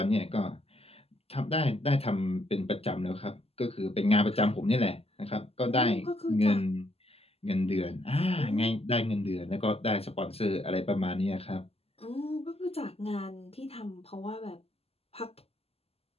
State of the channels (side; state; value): right; late; 0.29 ms